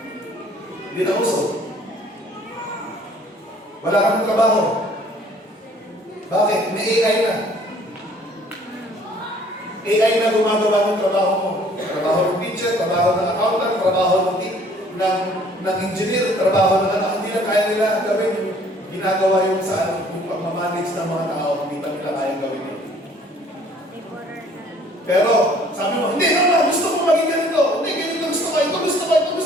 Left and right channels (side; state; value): both; normal; correlation 0.56